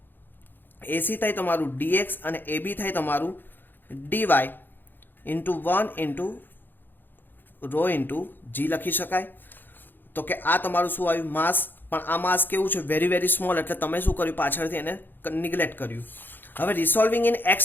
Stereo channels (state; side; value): late; right; 0.093 ms